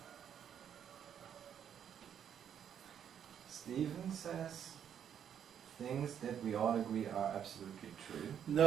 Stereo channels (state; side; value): quieter; left; 8.9 dB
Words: Stephen says things that we all agree are absolutely true.